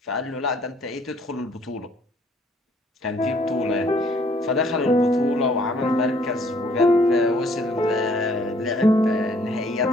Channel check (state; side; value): normal; both; correlation 0.62